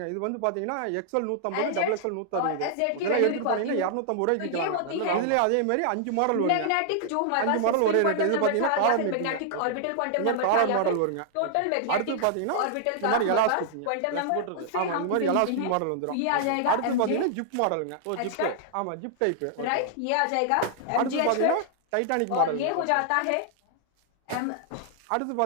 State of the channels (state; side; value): different; both; correlation -0.01